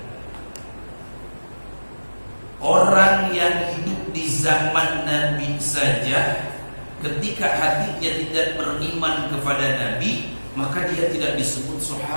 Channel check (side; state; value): both; inverted; correlation -1.00